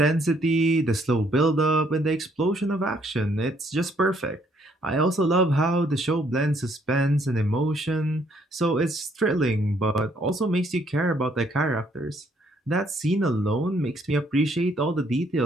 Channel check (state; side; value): normal; both; correlation 0.67